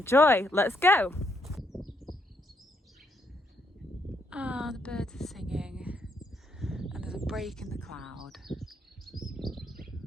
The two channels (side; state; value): both; normal; correlation 0.75